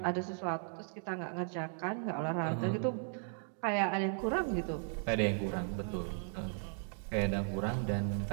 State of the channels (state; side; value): silent; left; 54 dB below the other